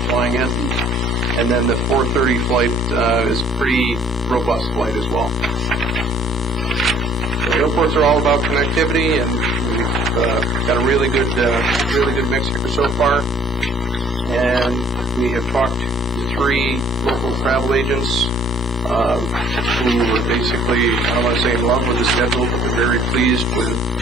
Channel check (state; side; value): normal; both; correlation 0.58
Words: flying in. And then the 4:30 flight is a pretty robust flight as well. The airports are all about connectivity, and we've got a really good mix here so far. And we have talked to 3 local travel agents who were basically, I don't want to say in love with the schedule, but they're very pleased with